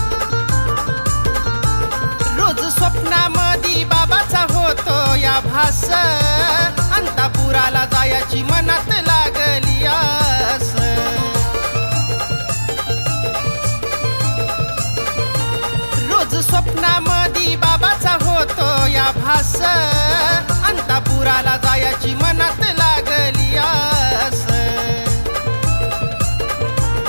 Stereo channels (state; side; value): inverted; both; correlation -1.00